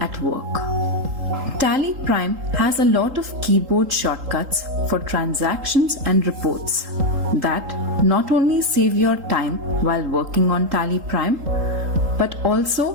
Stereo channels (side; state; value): left; late; 3.8 ms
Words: work. TallyPrime has a lot of keyboard shortcuts for transactions and reports that not only save your time while working on TallyPrime, but